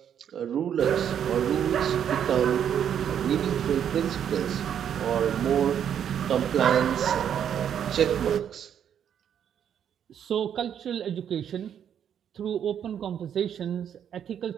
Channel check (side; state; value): left; quieter; 9.0 dB